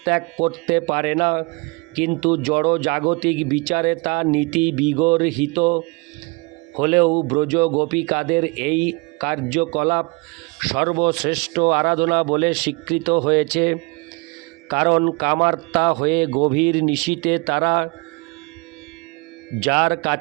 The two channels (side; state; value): left; quieter; 29.6 dB